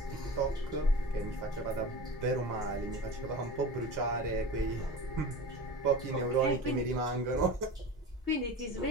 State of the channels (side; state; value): both; normal; correlation 0.32